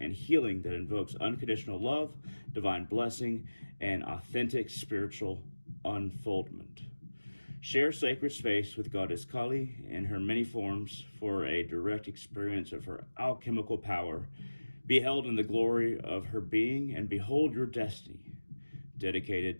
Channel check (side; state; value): both; inverted; correlation -1.00